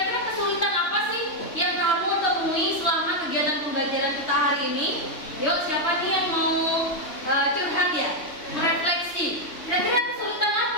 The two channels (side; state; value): right; late; 3.1 ms